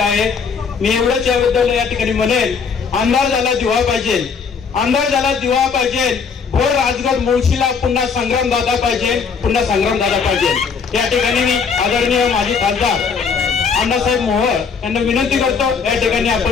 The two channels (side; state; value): right; quieter; 5.8 dB